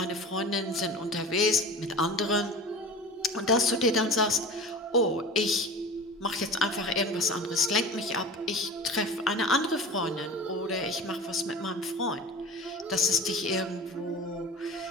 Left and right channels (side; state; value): both; normal; correlation 0.34